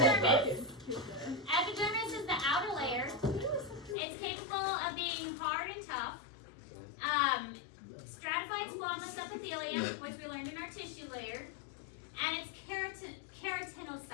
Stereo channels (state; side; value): drops out; right; at 4.0 s